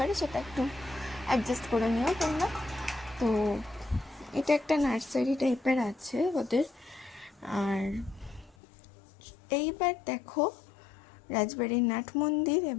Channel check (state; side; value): drops out; right; at 8.6 s